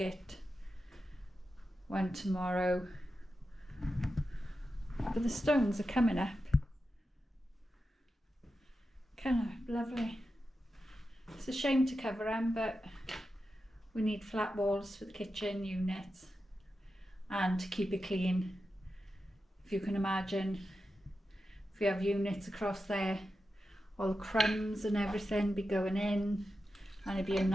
one tomorrow. But the stones are coming up. Kind of lovely. It's a shame to cover them, but we need flat walls for the kitchen units and to keep it clean. If you can imagine, if you have units across there, all the crumbs and everything be going in, and it'd be a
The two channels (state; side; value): normal; both; correlation 0.90